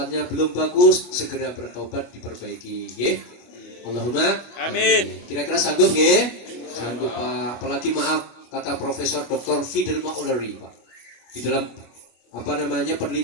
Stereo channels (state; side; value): late; right; 25 ms